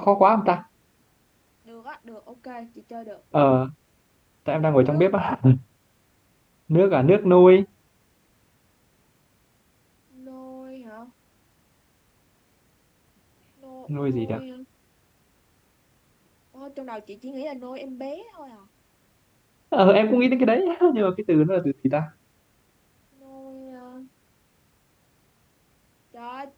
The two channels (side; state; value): both; identical; correlation 1.00